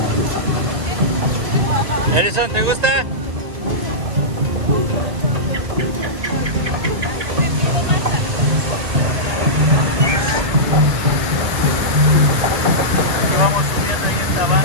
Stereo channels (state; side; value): late; left; 2.1 ms